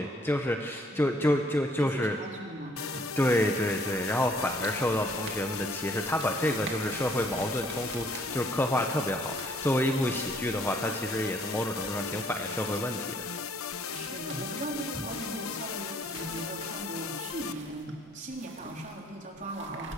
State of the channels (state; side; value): normal; both; correlation 0.62